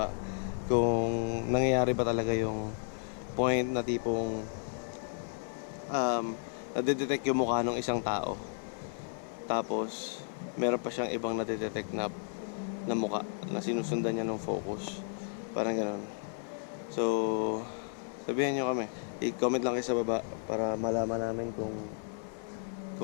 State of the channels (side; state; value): right; silent; 56 dB below the other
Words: kung nangyayari ba talaga yung point na tipong nadedetect yung mukha ng isang tao, tapos meron pa siyang ibang nadedetect na mukha na sinusundan niya ng focus, parang gano'n. So sabihan nyo kami, i-comment lang kayo sa baba para malaman namin kung